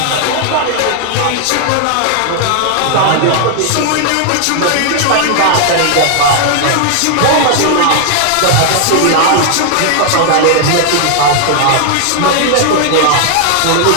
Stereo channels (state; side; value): different; both; correlation 0.00